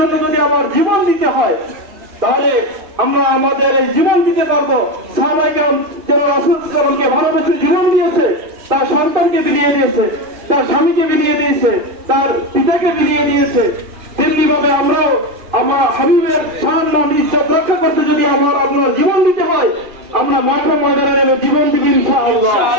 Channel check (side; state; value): left; late; 2.5 ms